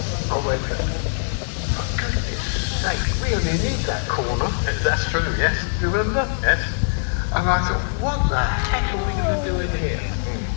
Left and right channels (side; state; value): right; silent; digital silence